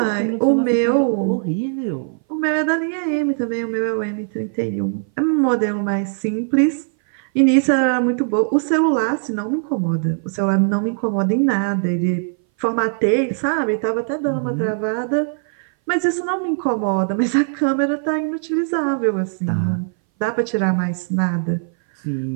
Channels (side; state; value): left; silent; 60 dB below the other